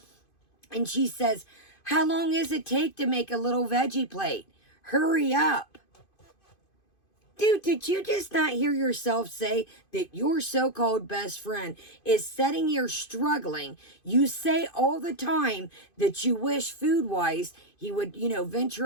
And she says, how long does it take to make a little veggie plate? Hurry up. Dude, did you just not hear yourself say that your so-called best friend is sitting here struggling? You say all the time that you wish food-wise he would,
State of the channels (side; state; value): right; late; 2.5 ms